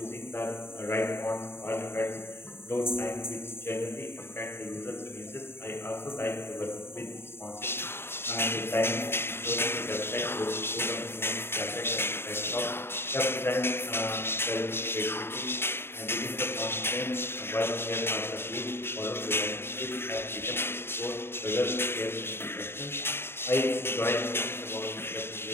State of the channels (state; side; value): late; right; 0.11 ms